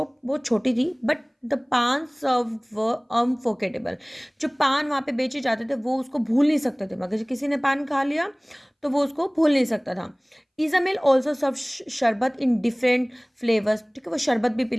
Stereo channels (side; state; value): both; identical; correlation 1.00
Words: बहुत छोटी थी, बट द पान सर्व व अनफॉरगेटेबल। जो पान वहाँ पे बेचे जाते थे वो उसको भूल नहीं सकते थे, मगर किसी ने पान खा लिया तो वो उसको भूल नहीं सकता था। इजामेल ऑल्सो सर्व शरबत इन डिफरेंट फ्लेवर्स। ठीक है, वो शरबत भी